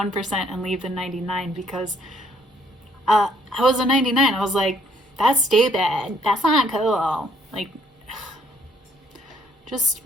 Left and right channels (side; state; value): both; normal; correlation 0.65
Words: and leave the 99 because I was a 99. I was like, that's stupid. That's not cool. Like, just